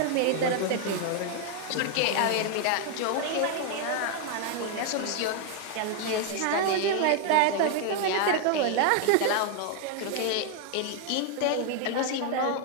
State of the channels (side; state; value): both; different; correlation 0.01